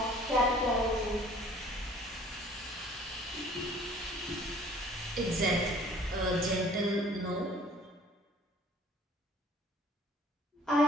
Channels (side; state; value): both; normal; correlation 0.53